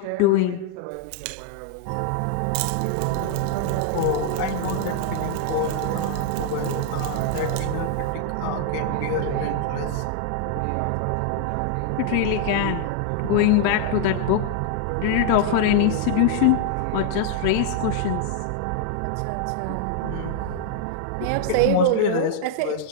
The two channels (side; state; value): both; different; correlation -0.01